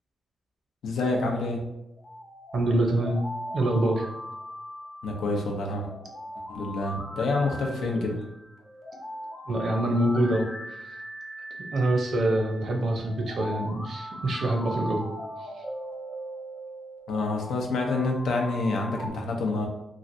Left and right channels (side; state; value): both; normal; correlation 0.78